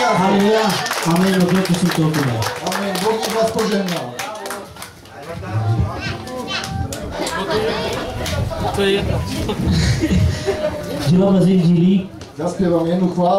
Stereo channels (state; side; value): identical; both; correlation 1.00